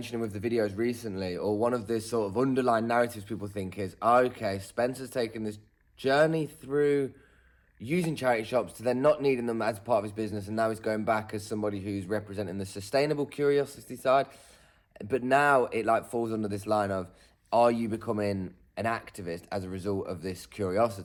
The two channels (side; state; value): both; identical; correlation 1.00